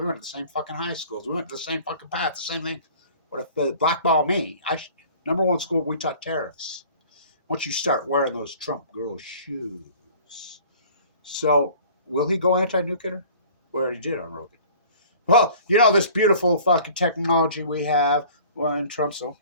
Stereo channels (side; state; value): both; inverted; correlation -0.48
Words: went to the same fucking high schools. We went to the same fucking path, the same thing. What if they blackball me? Number one school, we taught tariffs. Once you start wearing those Trump girl shoes. So, will he go anti-nuclear? We already did on Rogan. Well, this beautiful fucking technology we have. Well, in Trump's,